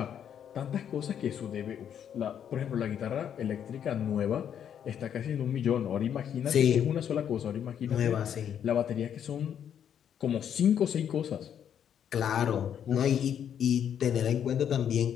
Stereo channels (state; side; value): quieter; right; 9.0 dB